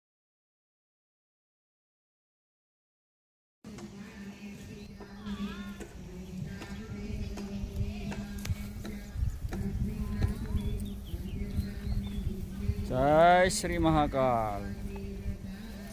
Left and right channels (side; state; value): both; identical; correlation 1.00